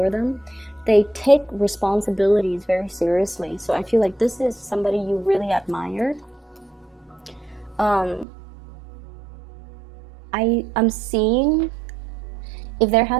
them. They take responsibilities very seriously. So I feel like this is somebody you really admire. I'm seeing if there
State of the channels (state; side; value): drops out; left; at 8.2 s